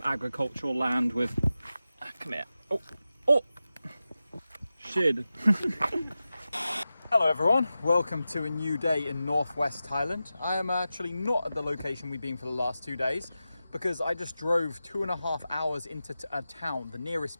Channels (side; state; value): both; inverted; correlation -0.93